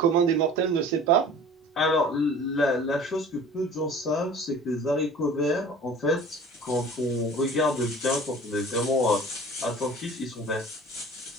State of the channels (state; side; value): normal; both; correlation 0.44